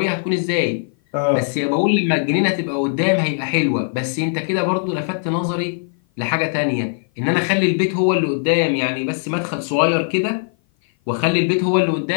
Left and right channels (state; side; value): silent; right; 56 dB below the other